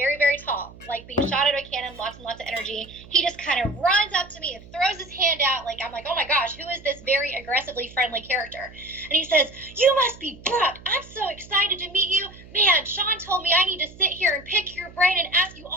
very tall, like being shot out of a cannon, lots and lots of energy. He just kind of runs up to me and throws his hand out. Like, I'm like, oh my gosh, who is this very aggressively friendly character? And he says, you must be Brooke. I'm so excited to meet you. Man, Sean told me I need to sit here and pick your brain and ask you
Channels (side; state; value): right; noise; hum, 20 dB below the sound